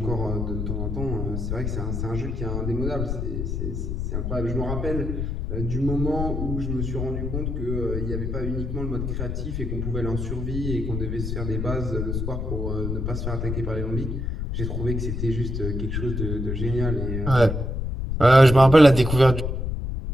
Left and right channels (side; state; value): left; noise; rumble, 2 dB below the sound